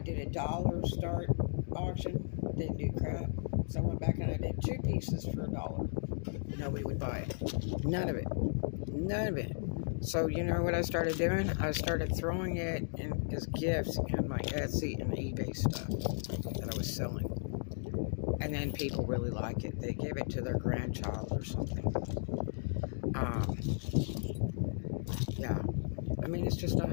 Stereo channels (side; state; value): right; silent; digital silence